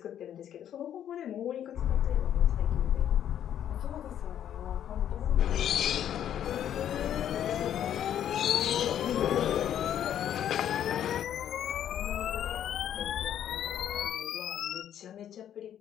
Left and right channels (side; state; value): right; quieter; 10.2 dB